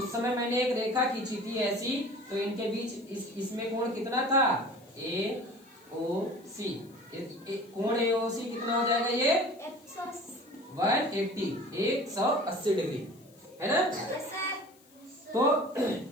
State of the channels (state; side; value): noise; left; hiss, 28 dB below the sound